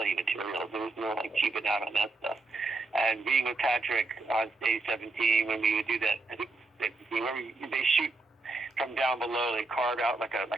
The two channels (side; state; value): left; quieter; 3.3 dB